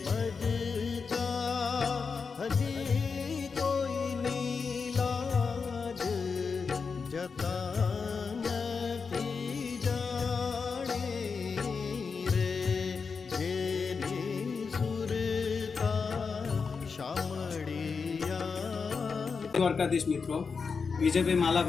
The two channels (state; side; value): quieter; right; 5.2 dB